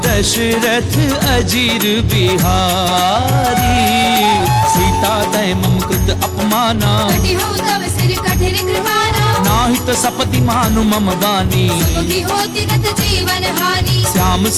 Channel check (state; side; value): identical; both; correlation 1.00